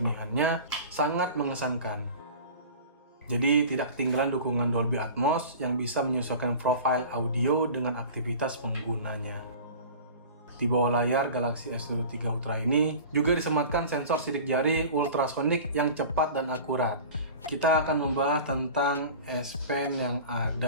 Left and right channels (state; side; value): inverted; both; correlation -0.38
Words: sangat mengesankan. Jadi tidak ketinggalan dukungan Dolby Atmos yang bisa menyesuaikan profil audio dengan aktivitas penggunanya. Di bawah layar Galaxy S23 Ultra ini juga disematkan sensor sidik jari ultrasonic yang cepat dan akurat. Kita akan membahas tentang S Pen yang